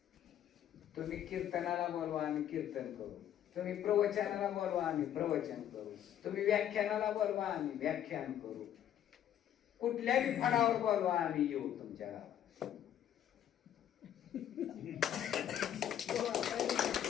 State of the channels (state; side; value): quieter; right; 10.6 dB